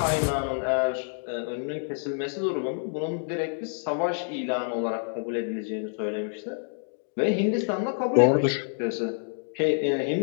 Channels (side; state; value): right; silent; digital silence